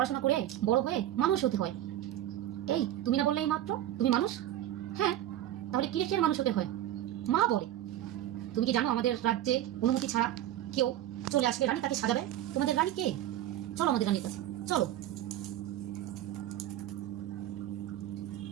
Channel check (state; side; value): quieter; left; 12.8 dB